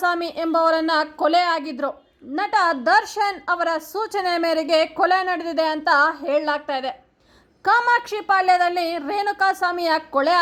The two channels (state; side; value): identical; both; correlation 1.00